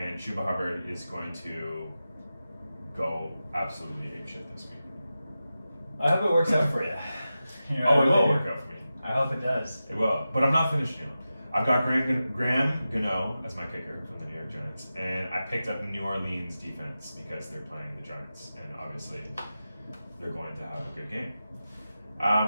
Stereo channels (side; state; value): both; inverted; correlation -0.93